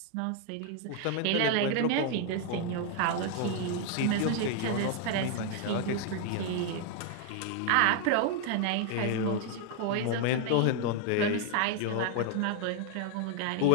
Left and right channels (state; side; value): different; both; correlation 0.00